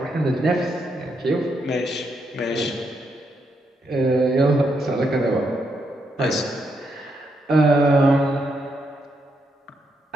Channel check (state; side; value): normal; both; correlation 0.79